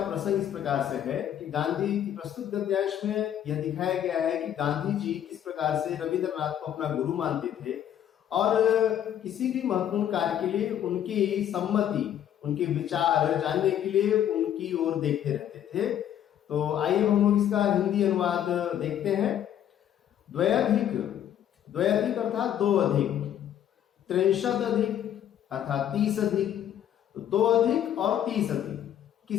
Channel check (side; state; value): right; quieter; 10.5 dB